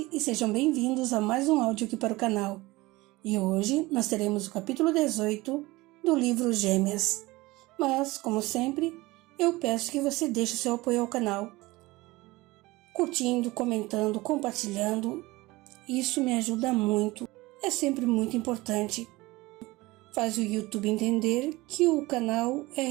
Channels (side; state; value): left; quieter; 20.7 dB